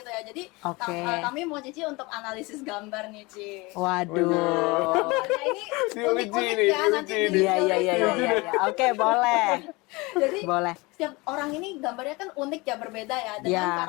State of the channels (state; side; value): quieter; right; 24.4 dB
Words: ya. Jadi Oke. kami mau Cici untuk analisis gambar nih, Ci. Waduh. Gambarnya ini unik-unik Diuji ya, nih, nanti diuji di nih. Iya, iya, iya, iya, iya. Oke, boleh. Jadi Boleh. setiap orang ini gambarnya kan unik ya, berbeda ya dengan Ya.